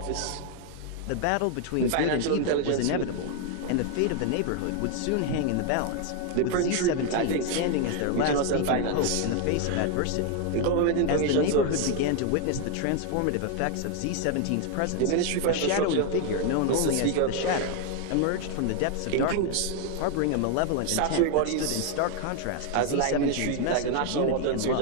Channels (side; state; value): both; different; correlation 0.01